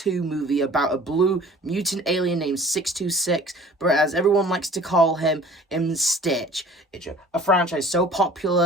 movie about a blue mutant alien named 626, but as everyone likes to call him, Stitch. It's a franchise so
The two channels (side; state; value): both; normal; correlation 0.48